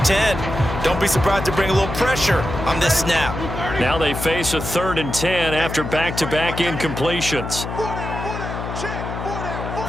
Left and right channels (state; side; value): noise; left; hum, 6 dB below the sound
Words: 10. Don't be surprised to bring a little pressure on this snap. Now they face a 3rd and 10 after back-to-back incompletions.